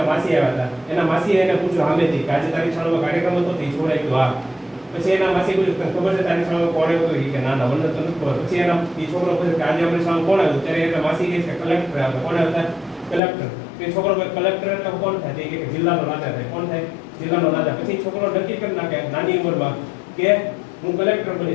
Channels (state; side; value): drops out; right; at 13.2 s